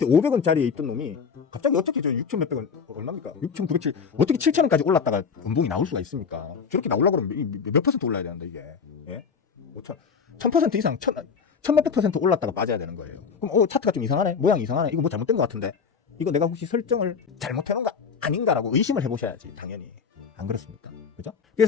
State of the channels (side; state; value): right; quieter; 6.0 dB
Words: 500원짜리에 있던 놈이 갑자기 어떻게 저 6천 몇백 원 얼마입니까? 6,907 어떻게 7,000원까지 올랐다가 연봉이 나올 수가 있습니까? 저렇게 나오려고 그러면 몇 퍼센트 올라야 되는데 이게 1000% 이상 1000몇백 퍼센트 올랐다가 빠져야 되는 거예요. 그럼 차트가 좀 이상하네, 모양이 이상하네, 이거 뭐 잘못된 것 같은데 이거 내가 혹시 설정을 잘못해놓은 거 아닌가라고 의심을 해보셔야지. 당연히 안 그렇습니까? 그죠?